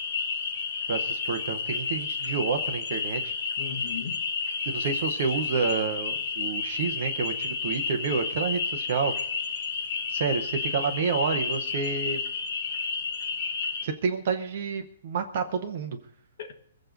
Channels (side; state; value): both; inverted; correlation -0.51